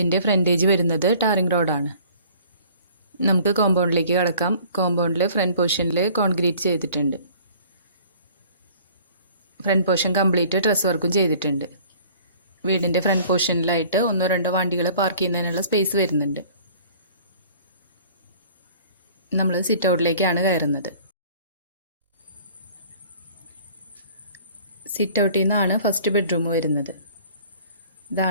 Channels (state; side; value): inverted; both; correlation -0.51